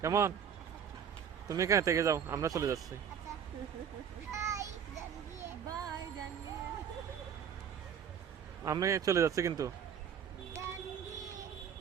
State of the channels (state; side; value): quieter; left; 8.0 dB